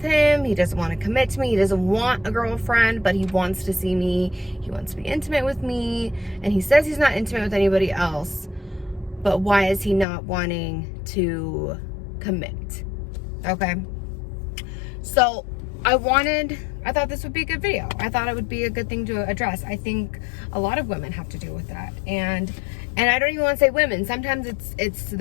him? He doesn't want to commit to me. He doesn't want a girlfriend, but he wants to see me. He wants to be intimate with me, and he says he's not intimate with anybody else, but why is he not wanting to commit? Okay, so I thought this would be a good video. I thought it would be a good thing to address. I think a lot of women have to deal with that. And I don't even want to say women. Sometimes it's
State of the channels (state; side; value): drops out; right; at 10.1 s